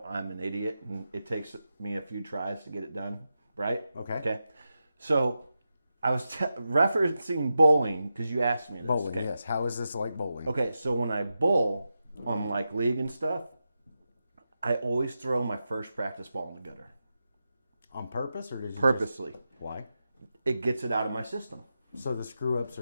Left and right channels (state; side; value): inverted; both; correlation -0.89